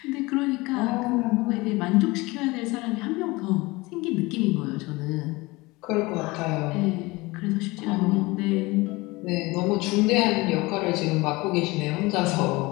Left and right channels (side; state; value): right; quieter; 22.5 dB